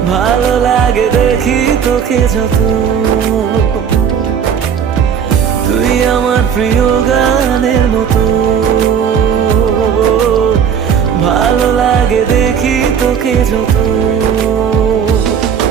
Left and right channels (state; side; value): quieter; left; 7.6 dB